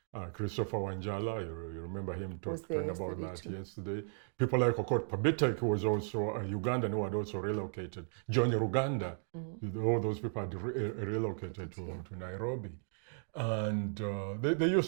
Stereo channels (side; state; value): left; silent; digital silence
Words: Christopher Wanjala, you remember him talking about that yesterday. People like Okot Pabitek, who was also a Ugandan, who had also relocated. John Ruganda, all those people had relocated to Nairobi. And they